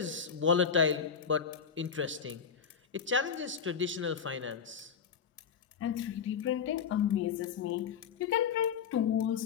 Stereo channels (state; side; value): quieter; right; 6.8 dB